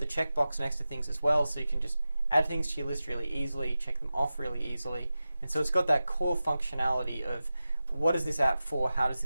checkbox next to things as well, so you can just add things to your list really easily, check them off really easily. And so it's got that core functionality of what is this app for, how does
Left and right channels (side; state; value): both; inverted; correlation -0.94